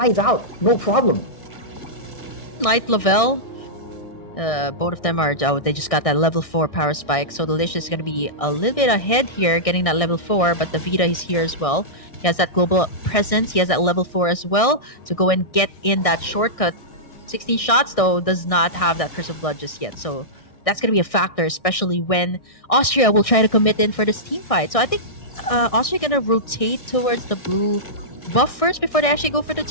out, no problem. Night Lavelle, both of them are, oh, they just got that level 4 power spike. So Delicious is going to be a little bit ahead here, getting that level 4, but the Vita is here as well. He has that global presence. He has that level 4 as well to go and get in that shortcut. 16 shots, though, does not have that Curse of Blood just yet. So that's going to be a factor, especially when Austria will try to commit in for this team fight. So I think Austria going to rotate towards the blue buff first before they actually go for the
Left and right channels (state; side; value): late; right; 1.6 ms